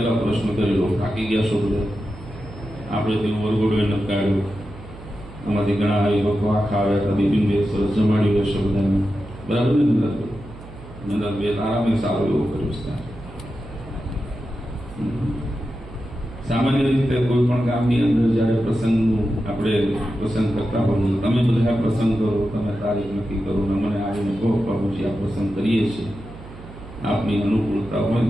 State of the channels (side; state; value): right; noise; hum, 16 dB below the sound